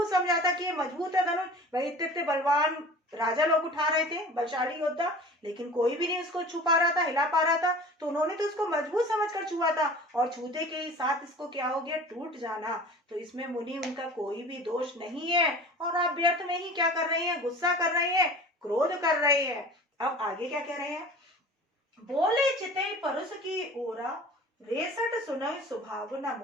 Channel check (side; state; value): both; normal; correlation 0.41